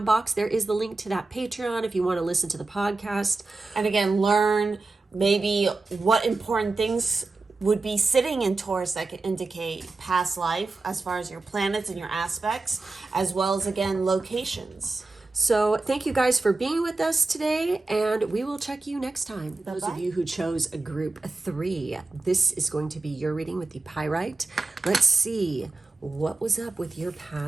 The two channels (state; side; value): quieter; left; 3.5 dB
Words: box, there is the link to that Patreon if you want to listen to the podcast. And again, learn maybe what important things would be sitting in Taurus that could indicate past life, as far as your planets and your aspects, as well as, again, locations. So thank you guys for being with us today, and we will check you next time. Those of you who chose a group 3, this is going to be your reading with the Pyrite. Let's see what was up with your